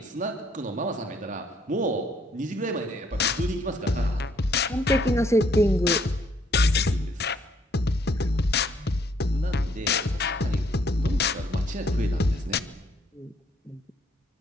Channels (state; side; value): normal; both; correlation 0.67